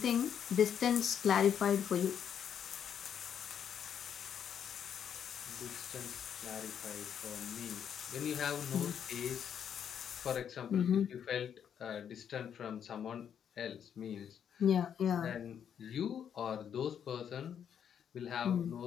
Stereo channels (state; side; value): quieter; right; 8.5 dB